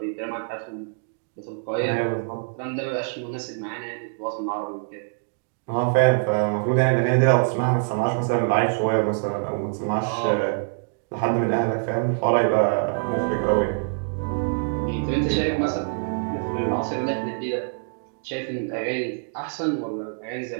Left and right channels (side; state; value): left; silent; digital silence